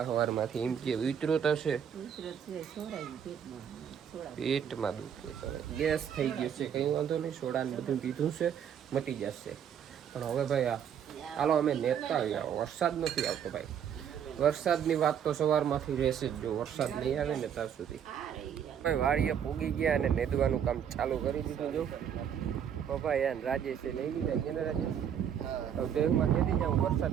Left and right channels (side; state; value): left; quieter; 8.5 dB